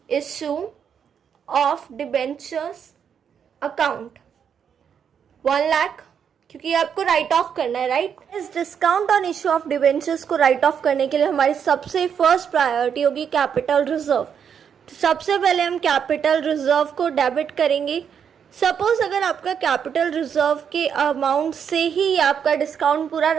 issue of debentures account 1 lakh, क्योंकि आपको राइट ऑफ करना है, राइट। इस discount on issue of debentures को राइट ऑफ करने के लिए हमारी सबसे फर्स्ट प्रायोरिटी होगी कैपिटल रिजर्व। तो सबसे पहले हम कैपिटल रिजर्व को डेबिट करेंगे। सपोज अगर आपका कैपिटल रिजर्व के अमाउंट से ही आपका डिस्काउंट पूरा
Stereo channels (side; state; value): left; quieter; 7.7 dB